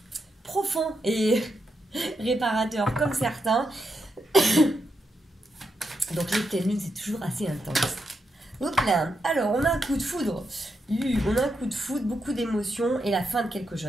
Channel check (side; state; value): both; normal; correlation 0.84